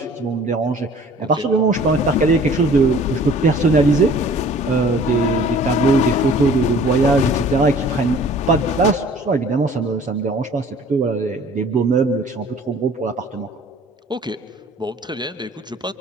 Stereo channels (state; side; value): normal; both; correlation 0.51